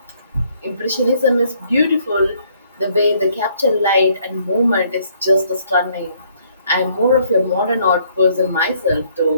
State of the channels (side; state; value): both; inverted; correlation -0.65